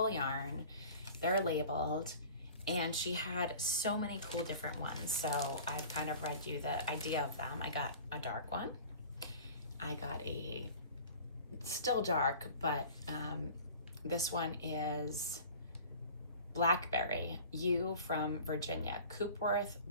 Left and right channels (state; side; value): inverted; both; correlation -0.42